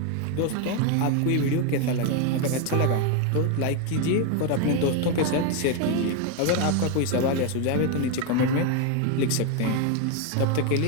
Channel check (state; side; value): different; both; correlation 0.01